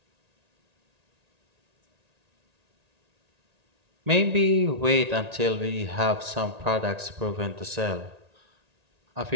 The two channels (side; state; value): left; late; 1.8 ms